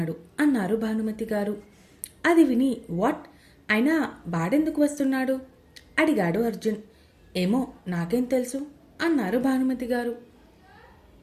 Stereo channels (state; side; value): identical; both; correlation 1.00